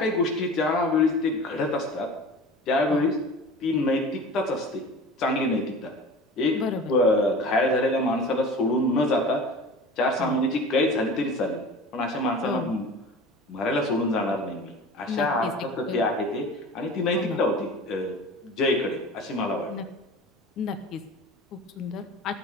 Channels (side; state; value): both; normal; correlation 0.38